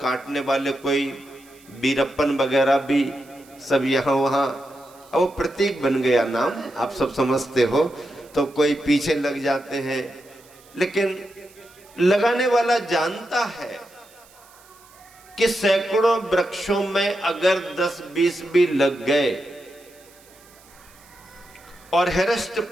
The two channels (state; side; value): noise; right; hiss, 26 dB below the sound